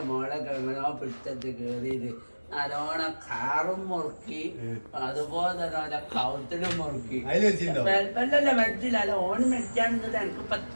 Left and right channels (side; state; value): both; inverted; correlation -1.00